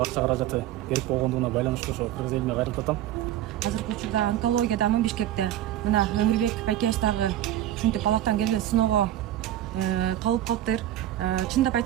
акча каражаты керек болгондугуна байланыштуу ошо кыргыз элине кайрылып жатам. Азыркы учурда онкология дамын Бишкекте. Мына Эмирбек байкебиз дагы ушинтип балактан келген сыноого калып калыптыр. Чындап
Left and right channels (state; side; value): quieter; left; 12.9 dB